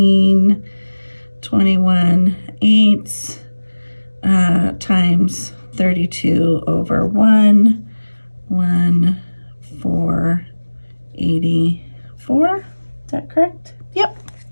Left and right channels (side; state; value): both; inverted; correlation -1.00